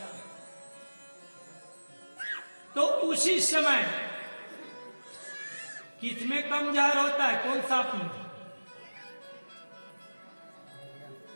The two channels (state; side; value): inverted; both; correlation -1.00